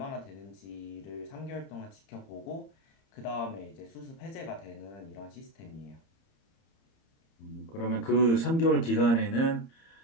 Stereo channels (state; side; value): late; right; 30 ms